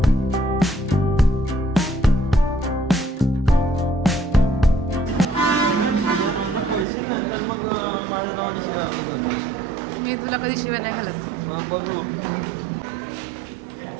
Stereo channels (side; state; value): left; drops out; at 6.9 s